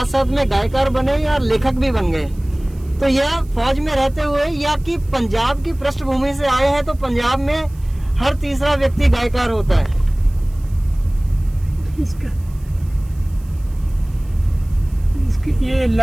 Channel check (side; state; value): right; noise; hiss, 28 dB below the sound